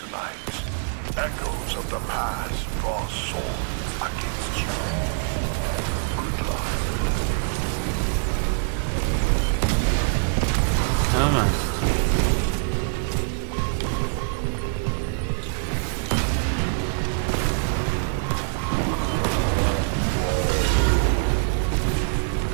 echoes of the past draw swords against you. Good luck.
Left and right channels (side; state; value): left; silent; 60 dB below the other